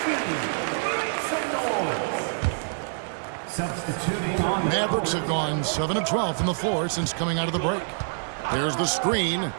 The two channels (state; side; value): silent; left; digital silence